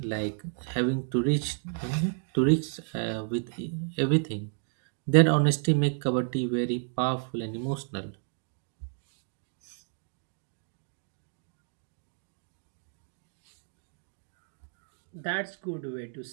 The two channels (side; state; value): left; silent; 57 dB below the other